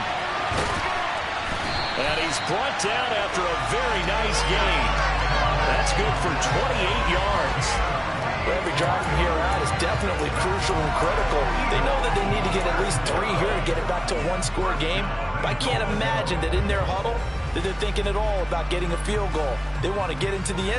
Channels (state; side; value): identical; both; correlation 1.00